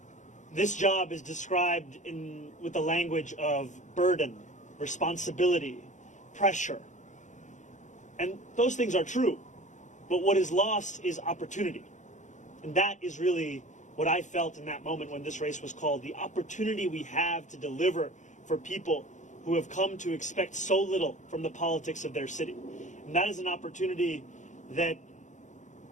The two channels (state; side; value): late; right; 0.35 ms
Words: this job is described with the language of burden, responsibility, pressure. And those things are true. But what is lost is opportunity. And that is really what I felt in that moment when this race was called, the opportunity we have to deliver for people who have come to expect so little from the politics of their city. And that is an opportunity that